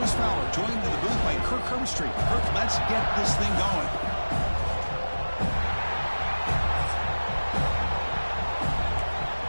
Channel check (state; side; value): inverted; both; correlation -1.00